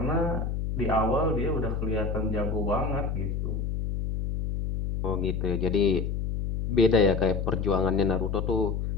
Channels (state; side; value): noise; left; hum, 2 dB below the sound